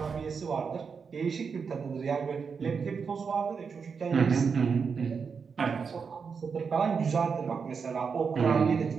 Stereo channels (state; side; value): quieter; left; 5.8 dB